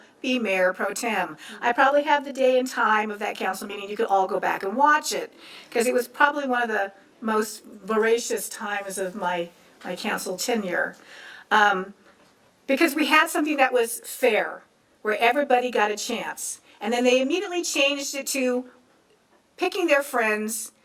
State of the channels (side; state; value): both; identical; correlation 1.00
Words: be mayor pro tem. I probably have the day and time of that council meeting. You could all go back and watch it because it was probably one of the most voracious times of my council tenure. Because we had something that was fair, where everybody got a chance. And then they immediately changed it to picking their friends,